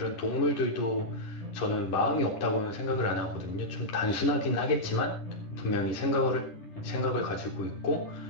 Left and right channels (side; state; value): right; late; 11 ms